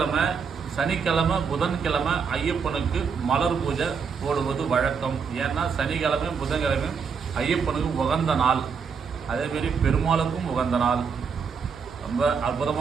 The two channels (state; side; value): quieter; left; 6.0 dB